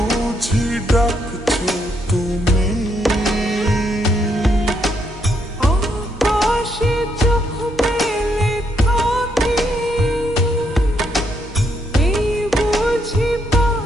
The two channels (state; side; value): normal; both; correlation 0.76